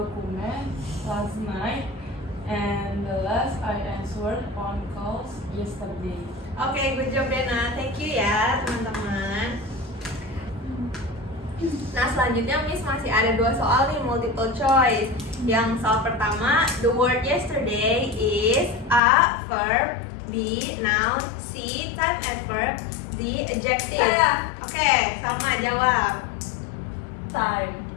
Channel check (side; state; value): right; drops out; at 19.0 s